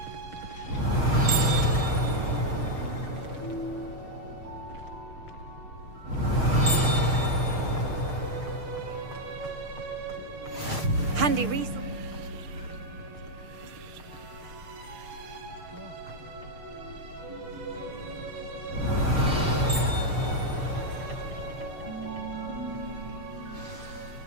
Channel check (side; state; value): left; late; 6.6 ms